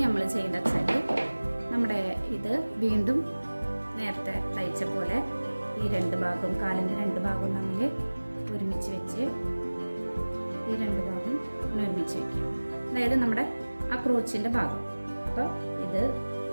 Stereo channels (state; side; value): inverted; both; correlation -1.00